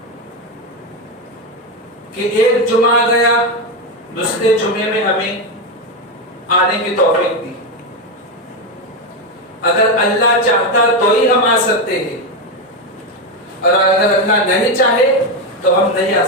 कि एक जुमा गया, दूसरे जुमे में हमें आने की तौफीक दी। अगर अल्लाह चाहता तो ही हम आ सकते हैं और अगर अल्लाह नहीं चाहे तो हम नहीं आ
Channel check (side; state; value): both; normal; correlation 0.10